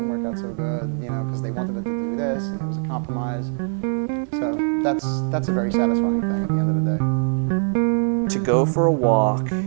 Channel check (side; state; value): left; silent; 64 dB below the other